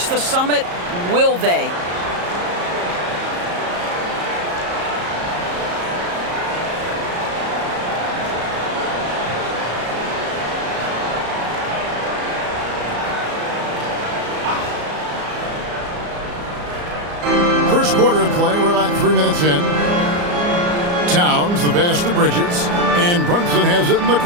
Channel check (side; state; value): left; late; 34 ms